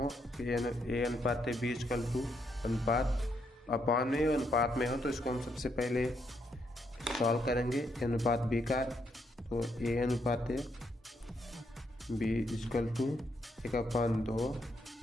कि ए अनुपात बी इक्वल टू अनुपात अपान में अनुपात में हो तो इसको हम सबसे पहले सॉल्व करेंगे। ए अनुपात बी का तो ए अनुपात बी इक्वल टू 1/2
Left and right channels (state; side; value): normal; both; correlation 0.76